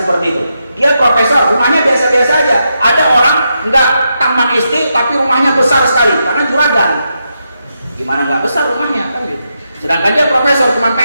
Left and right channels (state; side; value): inverted; both; correlation -0.84